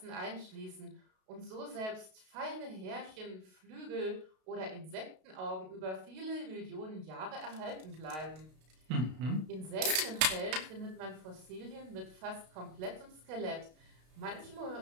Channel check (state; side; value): late; left; 32 ms